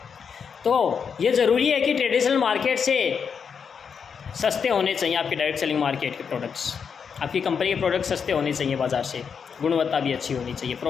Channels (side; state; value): right; quieter; 6.5 dB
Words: तो ये ज़रूरी है कि ट्रेडिशनल मार्केट से सस्ते होने चाहिए आपके डायरेक्ट सेलिंग मार्केट के प्रोडक्ट्स। आपकी कंपनी के प्रोडक्ट्स सस्ते होने चाहिए बाज़ार से, गुणवत्ता भी अच्छी होनी चाहिए,